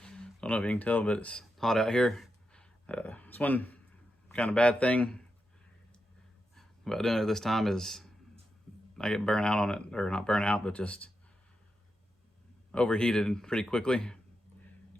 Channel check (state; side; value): normal; both; correlation 0.87